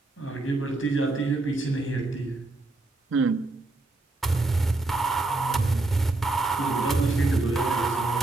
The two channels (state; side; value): quieter; left; 3.1 dB